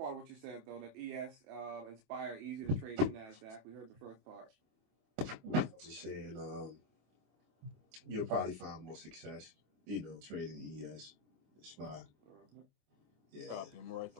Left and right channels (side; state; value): left; late; 26 ms